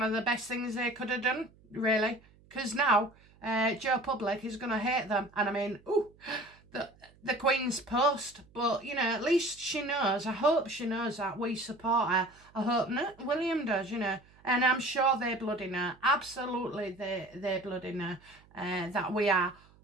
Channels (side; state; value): right; noise; hum, 28 dB below the sound